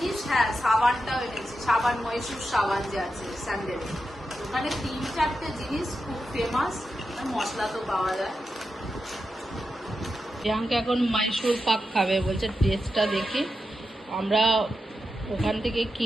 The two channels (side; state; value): both; normal; correlation 0.88